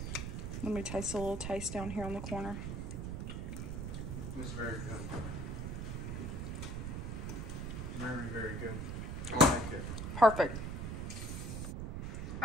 Let me taste a little taste down here on the corner. It's very good. Very, very good. I like it. Perfect.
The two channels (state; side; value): noise; right; rumble, 4 dB below the sound